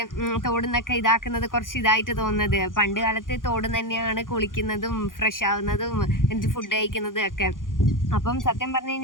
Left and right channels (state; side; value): late; right; 0.89 ms